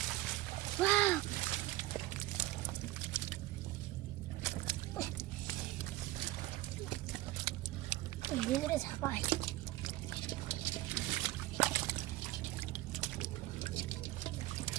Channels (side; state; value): left; quieter; 17.2 dB